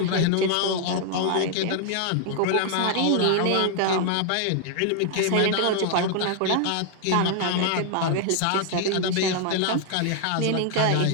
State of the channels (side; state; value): both; different; correlation 0.00